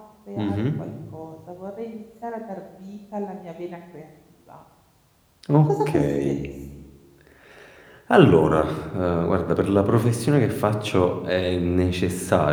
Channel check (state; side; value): identical; both; correlation 1.00